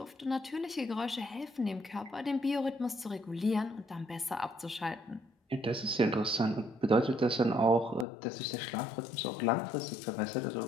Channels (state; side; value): drops out; right; at 8.1 s